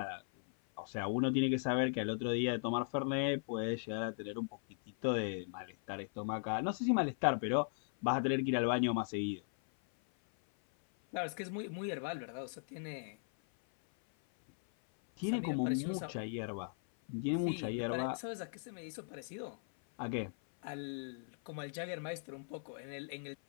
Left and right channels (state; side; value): silent; right; 52 dB below the other